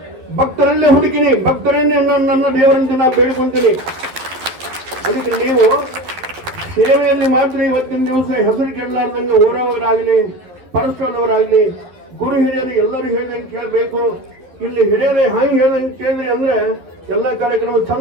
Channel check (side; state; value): left; late; 11 ms